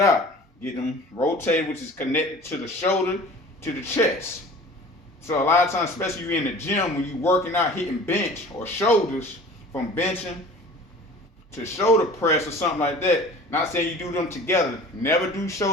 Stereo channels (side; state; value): both; normal; correlation 0.43